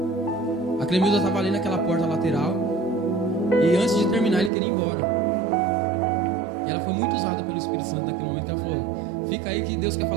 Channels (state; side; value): drops out; left; at 4.5 s